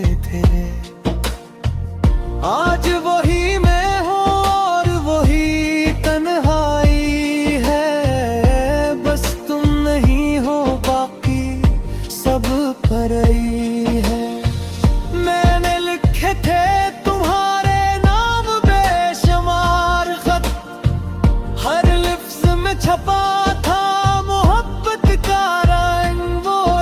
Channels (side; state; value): both; identical; correlation 1.00